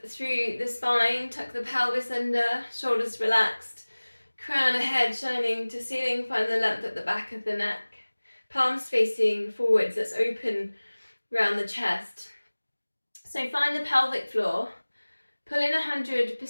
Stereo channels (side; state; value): both; inverted; correlation -1.00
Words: through the spine, tuck the pelvis under, shoulders relaxed, crown of head shining to ceiling, find the length at the back of the neck. Palms facing forwards, let's open around the chest. So find the pelvic floor, pull in